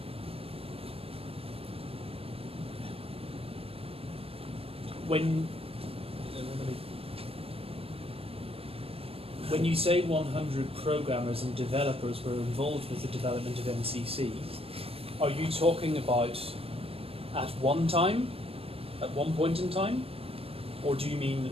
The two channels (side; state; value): left; late; 0.28 ms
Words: When you say 100 programmers and developers were involved with the development of MCC, are you talking about at one time, at one point in time, or do you mean